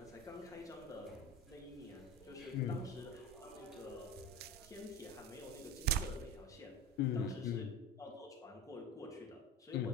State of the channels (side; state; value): both; normal; correlation 0.30